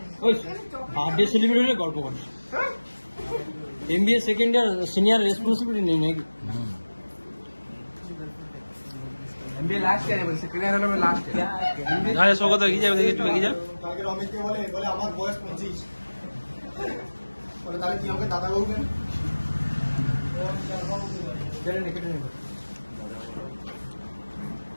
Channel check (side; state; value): both; inverted; correlation -1.00